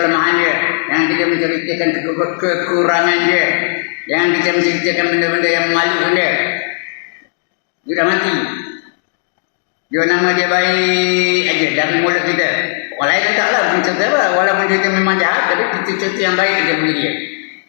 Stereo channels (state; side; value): silent; right; digital silence